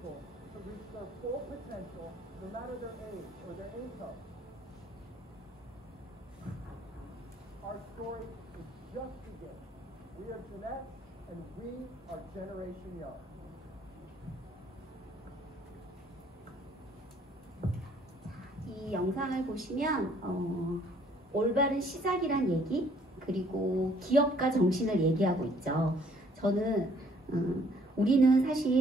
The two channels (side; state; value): both; normal; correlation 0.62